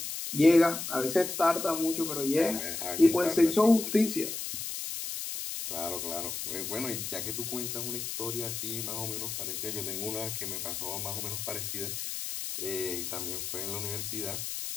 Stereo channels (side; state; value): left; noise; hiss, 5 dB below the sound